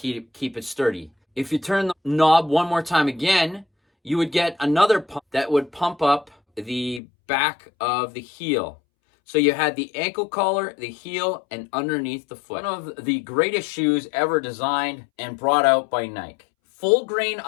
it sturdy. If you turn the knob one more time again, you would get another pump that would pump up the back of the heel. So you had the ankle collar, the heel, and underneath the foot. One of the greatest shoes ever designed and brought out by Nike. Full grain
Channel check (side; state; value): right; drops out; at 7.0 s